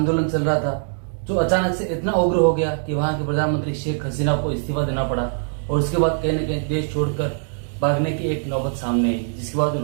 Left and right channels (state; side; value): silent; left; 59 dB below the other